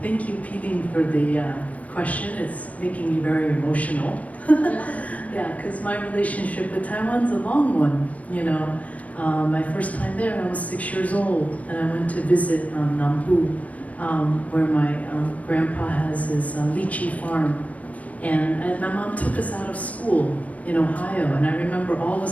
thank you, Peeling, for the question. It's making me very emotional. Yeah, because my relationship with Taiwan's a long one, you know. My first time there, I was 6 years old, and I went to visit Nambu, where my grandpa has his lychee farm. And my mom took us out of school in Ohio, and I remember all of a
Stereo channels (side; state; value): right; late; 0.070 ms